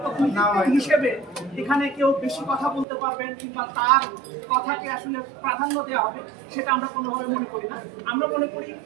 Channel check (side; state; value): left; drops out; at 2.9 s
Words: প্রতিনিধিত্ব হিসেবে এখানে কেউ বেশি কথা বলতে পারবেন কিংবা তার কথাকে আসলে প্রাধান্য দেওয়া হবে, সেটা আমরা কোনোভাবে মনে করি না। আমরা মনে করি